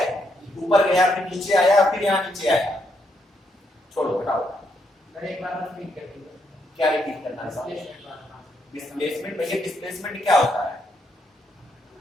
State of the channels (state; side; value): normal; both; correlation 0.77